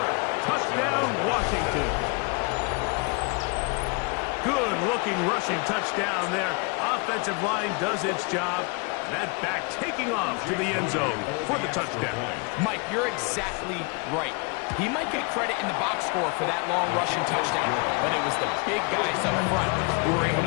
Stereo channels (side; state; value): right; quieter; 31.6 dB